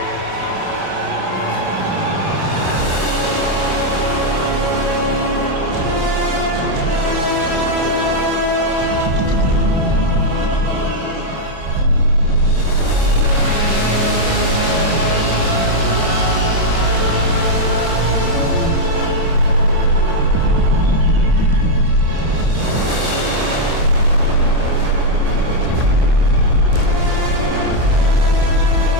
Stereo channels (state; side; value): late; left; 27 ms